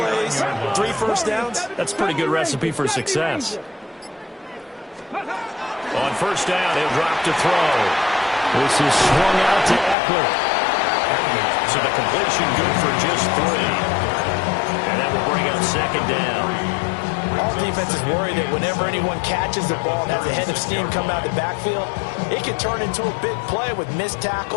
3 first downs. That's a pretty good recipe for success. On first down, he'll drop to throw. This is swung out to Eckler. So the completion good for just 3. And that will bring up second down. All defenses worry that whenever anyone catches the ball and has a head of steam come out of the backfield, it can turn into a big play with missed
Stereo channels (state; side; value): drops out; right; at 10.0 s